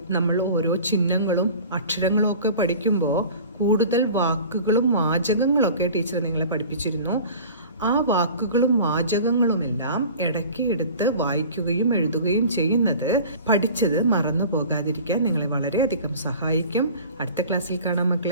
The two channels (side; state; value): both; inverted; correlation -0.42